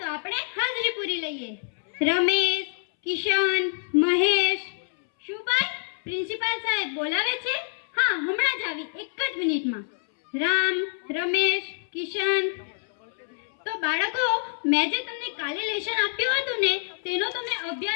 આપણે હાજરી પૂરી લઈએ. રમેશ, કિશન, મહેશ. શું ભાઈ, પ્રિન્સિપાલ સાહેબ બોલાવે છે? હા, હમણાં જ આવી, એક જ મિનિટમાં. રામ, રમેશ, કિશન. તો બાળકો, મેં જે તમને કાલે લેસન આપ્યું હતું ને, તેનો તમે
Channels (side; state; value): right; silent; 61 dB below the other